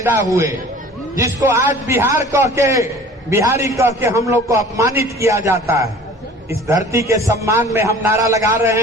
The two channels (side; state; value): both; normal; correlation 0.46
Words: हुए, जिसको आज बिहार कह के, बिहारी कह के हम लोग को अपमानित किया जाता है। इस धरती के सम्मान में हम नारा लगा